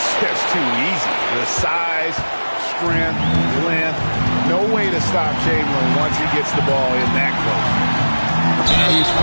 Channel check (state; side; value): inverted; both; correlation -1.00